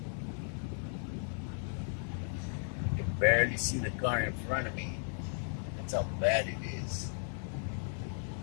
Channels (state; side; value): silent; right; 54 dB below the other